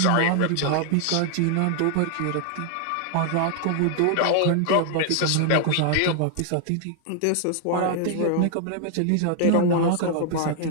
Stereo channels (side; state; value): both; different; correlation 0.00